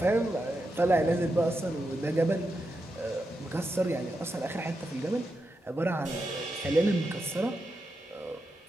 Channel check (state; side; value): normal; both; correlation 0.87